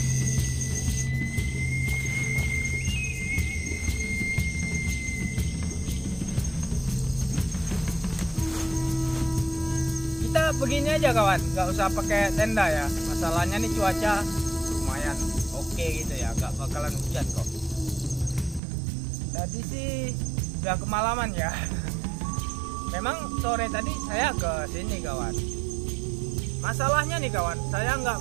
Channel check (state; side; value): drops out; left; at 18.6 s